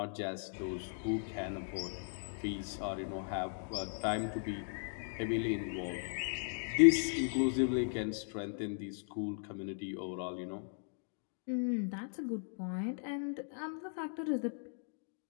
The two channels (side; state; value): right; silent; digital silence